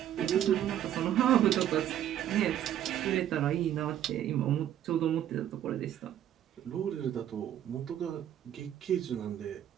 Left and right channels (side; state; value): left; quieter; 11.1 dB